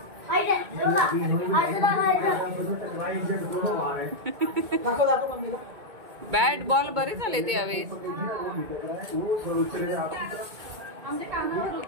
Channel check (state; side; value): late; left; 2.2 ms